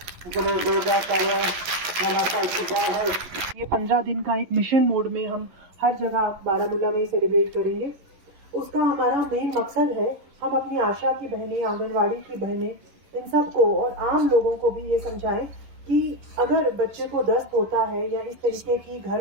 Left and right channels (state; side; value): late; left; 11 ms